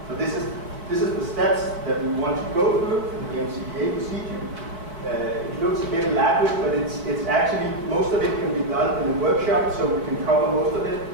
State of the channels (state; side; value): late; left; 4.5 ms